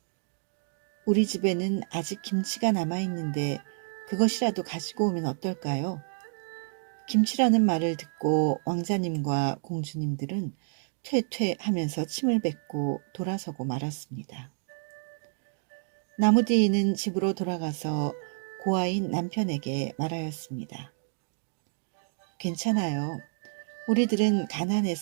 우리 집에는 아직 김치가 남아있는데 그것이라도 가지고 오면 어떨까요? 김치라는 말을 듣고 왕자님과 공주님들은 퇴퇴 하면서 침을 뱉고 돌아서고 말았습니다. 나무디는 집으로 돌아가서 고아인 남편에게 말하였습니다. 괜찮아요. 우리들은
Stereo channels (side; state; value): left; silent; 58 dB below the other